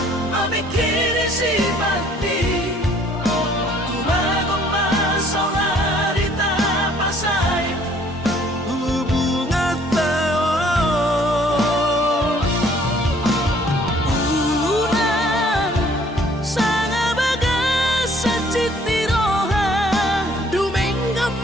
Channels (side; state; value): both; normal; correlation 0.59